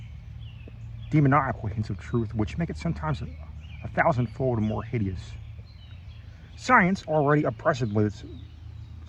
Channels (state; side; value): identical; both; correlation 1.00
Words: demoniacal hints of truth, which make it sometimes a thousandfold more hideous. Science, already oppressive with its